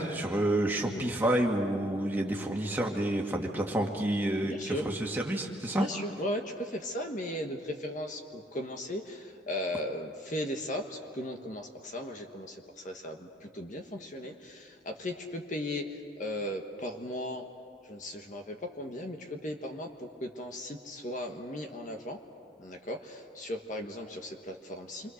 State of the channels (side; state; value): both; normal; correlation 0.64